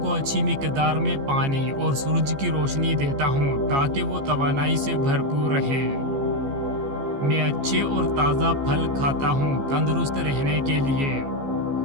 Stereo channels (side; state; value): left; late; 15 ms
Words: अच्छी मिक़दार में पानी और सूरज की रोशनी देता हूँ ताकि वो तवानाई से भरपूर रहे। मैं अच्छे और ताज़ा फल खाता हूँ तंदुरुस्त रहने के लिए।